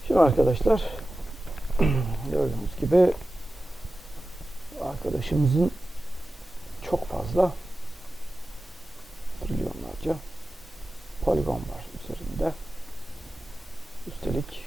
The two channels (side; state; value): both; normal; correlation 0.95